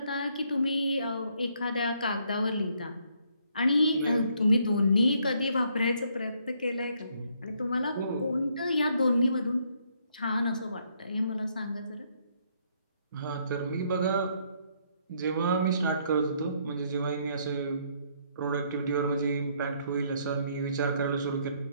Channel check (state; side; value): inverted; both; correlation -0.70